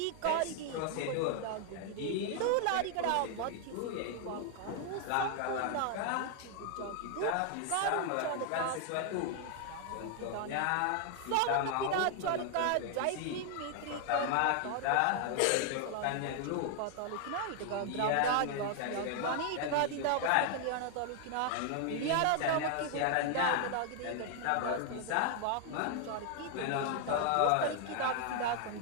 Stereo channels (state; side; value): different; both; correlation 0.00